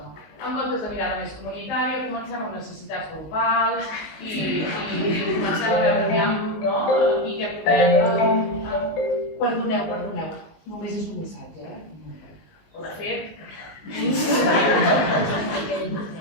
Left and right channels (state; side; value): late; right; 19 ms